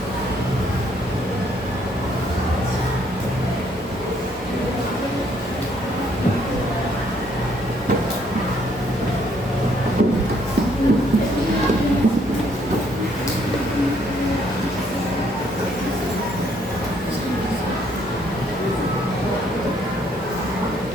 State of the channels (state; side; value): normal; both; correlation 0.67